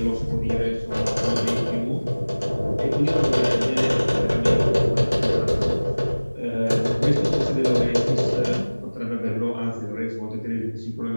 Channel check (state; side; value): inverted; both; correlation -1.00